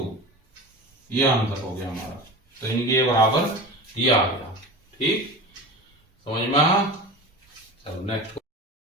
ये आंसर हो गया हमारा, तो यानी कि ये बराबर ये आ गया। ठीक, समझ में आ? चलो नेक्स्ट।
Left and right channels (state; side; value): normal; both; correlation 0.31